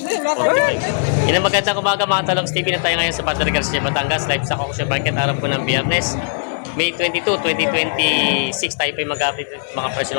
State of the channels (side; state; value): right; silent; 58 dB below the other